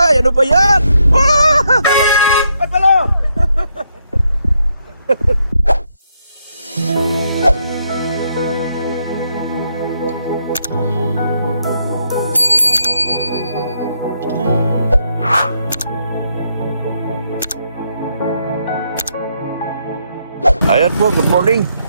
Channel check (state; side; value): inverted; both; correlation -0.77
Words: ano ba yan? Ay, palo! Ayan po, good morning.